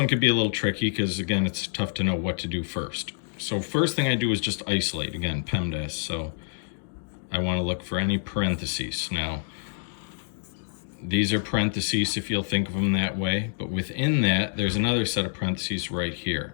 could be a little tricky because again, it's tough to know what to do first. So first thing I do is just isolate, again, PEMDAS. So I want to look for any parentheses. Now, these are parentheses if you'll think of them that way, but within that, there's another set of parentheses right here.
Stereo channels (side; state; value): right; silent; digital silence